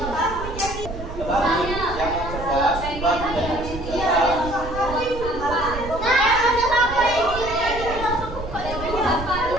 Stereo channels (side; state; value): right; noise; rumble, 9 dB below the sound